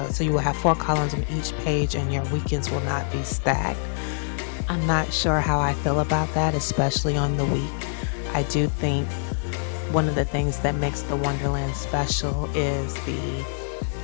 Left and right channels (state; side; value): silent; right; 62 dB below the other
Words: so you will have 4 columns on each page and your weekends will not be stacked. I'm not sure how I feel about that, especially on the week. I do think one of the things that makes the Wonderland special is the